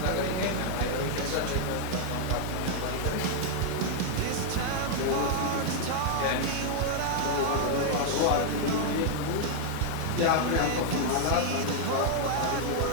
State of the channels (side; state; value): both; different; correlation 0.00